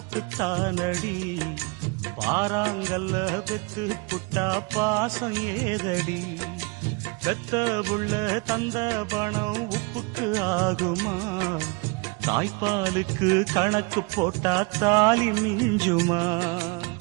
பாறாங்கல்ல பெத்து புட்டா பாசம் ஏதடி, பெத்த புள்ள தந்த பணம் உப்புக்கு ஆகுமா, தாய்ப்பாலுக்கு கணக்கு போட்டா தாலி மிஞ்சுமா,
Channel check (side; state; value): left; quieter; 27.6 dB